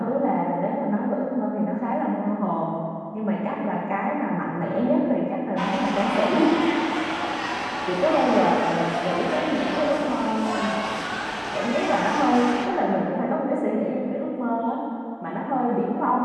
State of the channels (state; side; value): identical; both; correlation 1.00